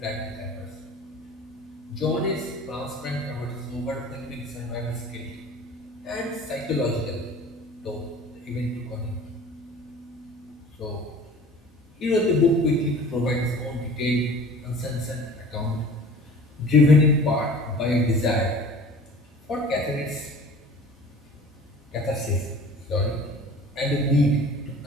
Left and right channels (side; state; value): both; normal; correlation 0.44